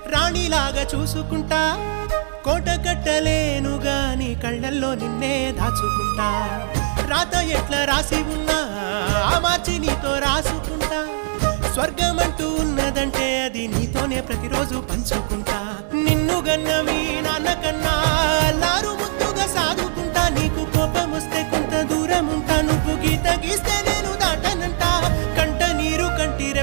రాణిలాగా చూసుకుంటా కోట కట్టలేను గాని కళ్ళల్లో నిన్నే దాచుకుంటా రాత ఎట్లా రాసి ఉన్నా మార్చి నీతో రాసుకుంటా స్వర్గమంటూ ఉన్నదంటే అది నీతోనే ప్రతిరోజు పంచుకుంటా నిన్ను గన్న మీ నాన్న కన్నా లారు ముద్దుగా సాదుకుంటా నీకు కోపం వస్తే కొంత దూరం ఉంటా నువ్వు గీత గీస్తే నేను దాటనంట కంట నీరు కంటి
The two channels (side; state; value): left; silent; digital silence